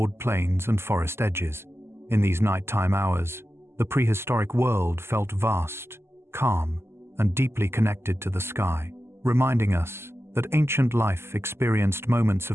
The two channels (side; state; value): left; late; 0.12 ms